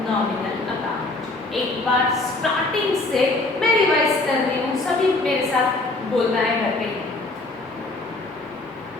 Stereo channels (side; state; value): right; quieter; 3.0 dB